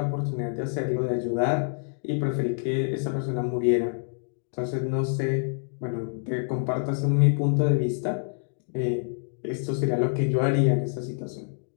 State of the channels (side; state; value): right; silent; digital silence